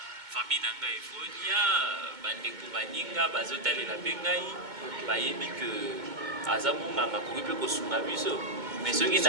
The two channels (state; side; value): late; left; 2.2 ms